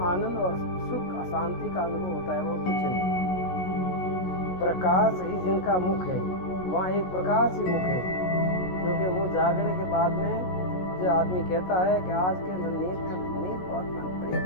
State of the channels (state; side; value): late; right; 16 ms